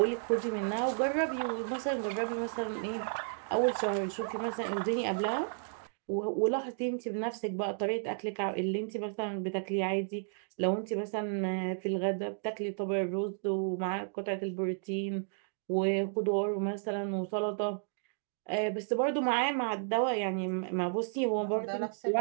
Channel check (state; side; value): silent; left; digital silence